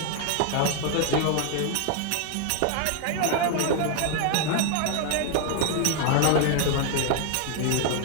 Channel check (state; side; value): different; both; correlation 0.00